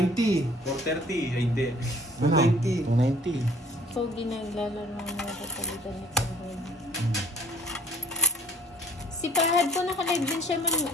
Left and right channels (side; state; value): both; normal; correlation 0.54